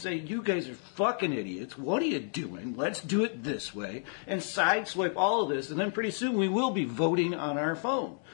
you guys are fucking idiots. What are you doing? Let's do it this way, and sideswipe all of this. And then pretty soon we will be voting on our phone.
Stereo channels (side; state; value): right; silent; 57 dB below the other